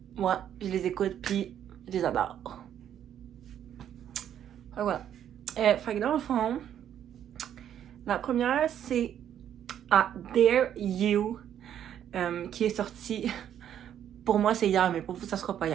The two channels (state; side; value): quieter; left; 10.0 dB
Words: moi, je les écoute puis je les adore. Fait voilà. Fait que dans le fond, la première c'est Dare You qui est sortie. Pour moi, c'est hier, mais pour vous, ça sera pas